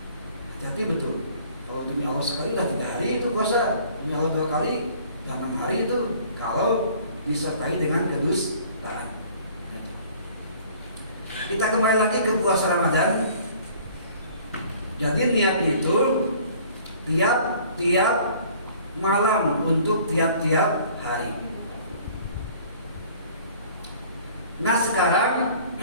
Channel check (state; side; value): inverted; both; correlation -0.52